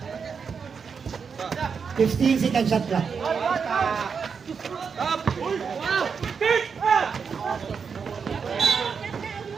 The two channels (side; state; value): left; quieter; 6.0 dB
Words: Fifteen second shot clock.